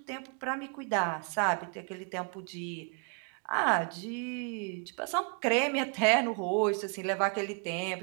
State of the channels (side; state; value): left; quieter; 38.4 dB